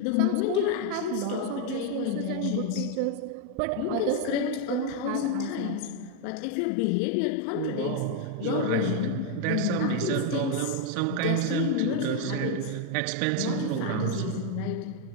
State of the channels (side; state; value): both; different; correlation 0.01